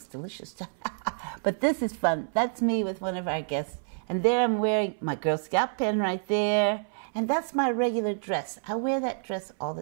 delicious. But this is fun. That's me with one of our guests. And there I'm wearing my Girl Scout pin right there. And that's my regular dress. I wear that dress all the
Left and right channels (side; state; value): left; silent; 59 dB below the other